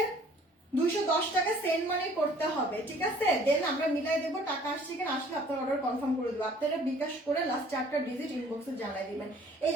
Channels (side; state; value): both; normal; correlation 0.54